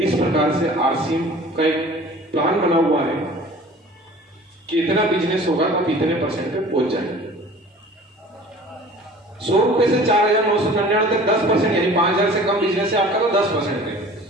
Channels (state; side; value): normal; both; correlation 0.45